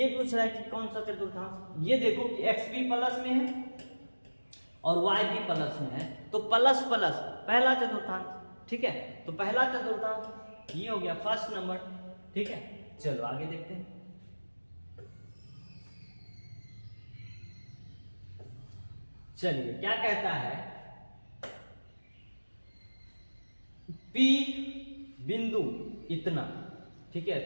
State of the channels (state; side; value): inverted; both; correlation -1.00